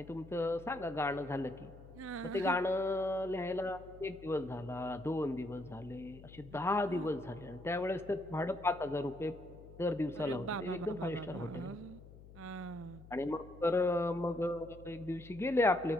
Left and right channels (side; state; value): left; noise; hum, 18 dB below the sound